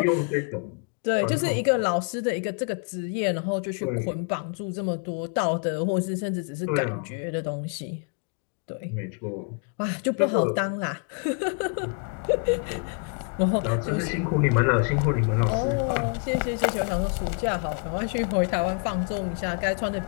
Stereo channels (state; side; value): quieter; right; 38.0 dB